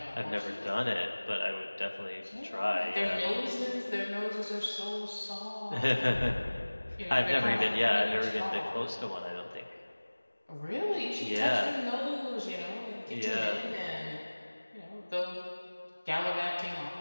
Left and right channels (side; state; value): both; inverted; correlation -1.00